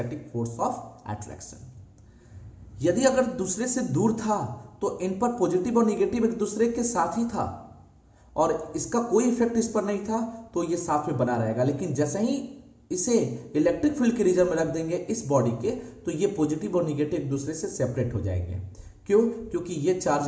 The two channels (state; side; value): identical; both; correlation 1.00